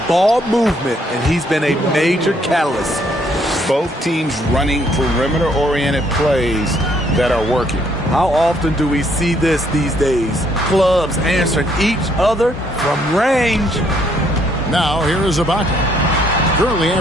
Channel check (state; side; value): normal; both; correlation 0.68